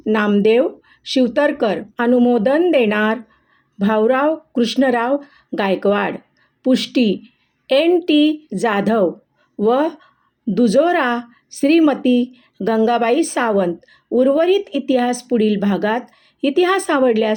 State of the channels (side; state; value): both; identical; correlation 1.00